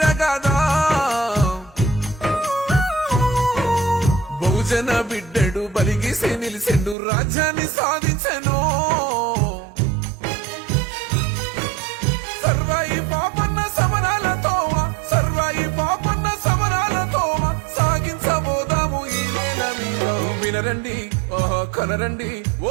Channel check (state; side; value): drops out; left; at 7.0 s